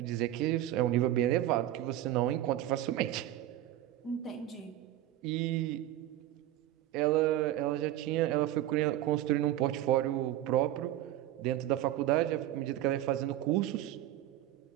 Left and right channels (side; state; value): left; quieter; 13.6 dB